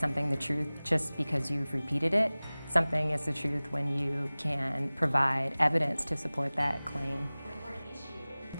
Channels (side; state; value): both; inverted; correlation -0.99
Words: the truth just because you've repeated it. Something is the truth when you can provide evidence to support that claim.